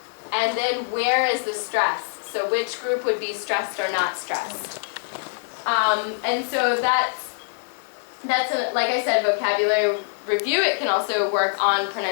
And then where is the stress? So which group would be stressed or not stressed? And so that's like I said, vocabulary review. It can also work on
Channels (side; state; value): right; silent; 63 dB below the other